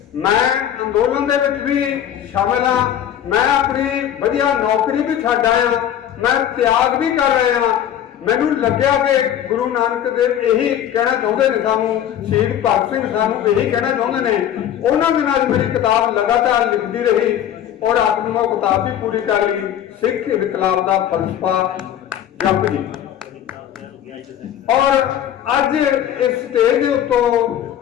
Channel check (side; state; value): right; quieter; 10.4 dB